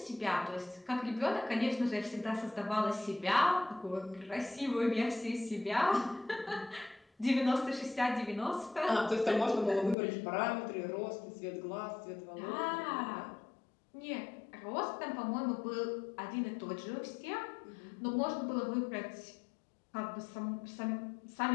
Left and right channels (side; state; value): right; drops out; at 10.0 s